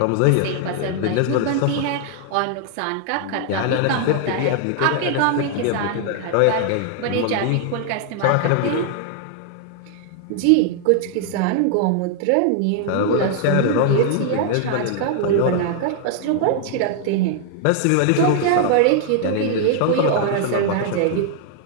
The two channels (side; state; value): both; different; correlation 0.00